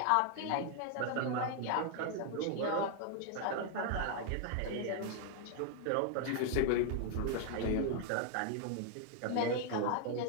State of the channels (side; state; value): both; different; correlation 0.00